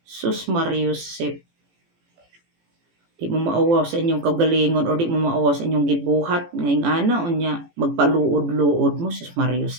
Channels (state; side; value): late; left; 18 ms